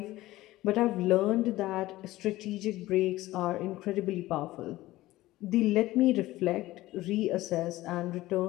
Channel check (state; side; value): quieter; right; 17.1 dB